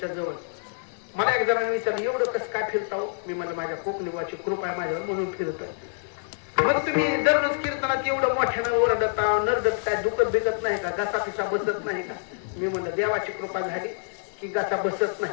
जवळ. मला एक जणांनी विचारलं, एवढं कसं काय फिरता? मी म्हणलं, माझ्या कोकणीवाची कृपा आहे माझ्यावर म्हणून फिरतो. मग तुम्ही दररोज कीर्तनात एवढं मोठ्यानं ओरडता नरडता, दुखत भिजत नाही का? घसा पिसा बसत नाही का? मी म्हणलं, देवाची कृपा झाली की घसा बसत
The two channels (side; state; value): right; silent; digital silence